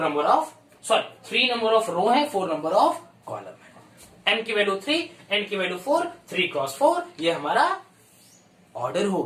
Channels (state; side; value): identical; both; correlation 1.00